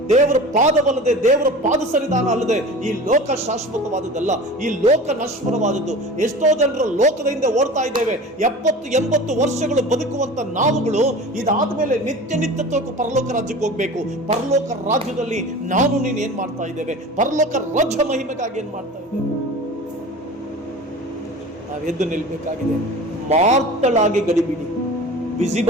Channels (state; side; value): normal; both; correlation 0.37